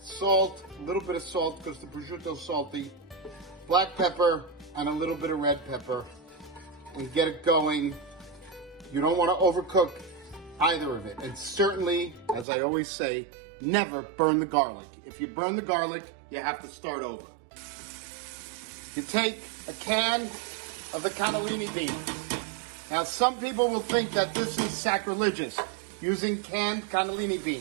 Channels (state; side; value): drops out; left; at 12.5 s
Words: salt, a little bit of salt because the prosciutto is salty, black pepper, and a little bit of red pepper, and get it going. You don't want to overcook either of it. And certainly, as I always say, never burn the garlic. If you burn the garlic, you have to start over. You take a can of the cannellini beans. Now, some people will think that this is sacrilegious, using canned cannellini